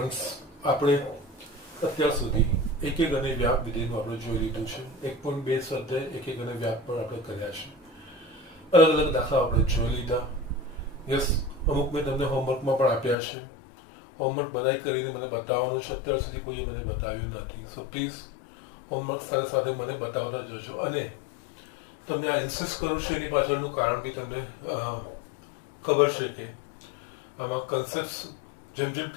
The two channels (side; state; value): right; drops out; at 13.2 s